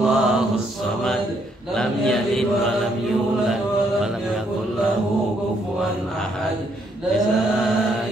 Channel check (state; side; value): normal; both; correlation 0.72